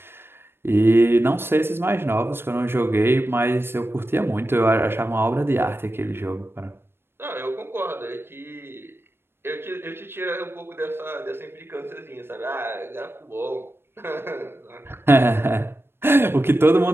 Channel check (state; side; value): late; left; 0.11 ms